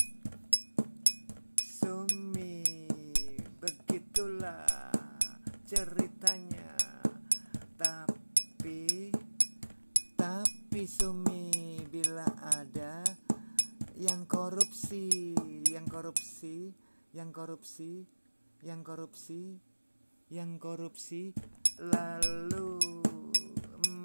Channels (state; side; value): inverted; both; correlation -1.00